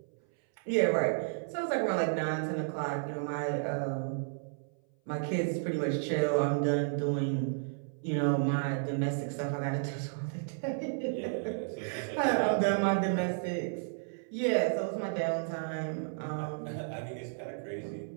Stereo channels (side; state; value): left; silent; 56 dB below the other